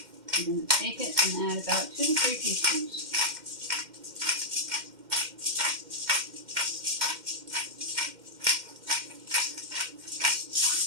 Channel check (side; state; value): left; late; 2.1 ms